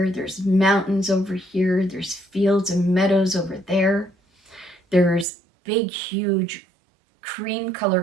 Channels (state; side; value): drops out; left; at 5.2 s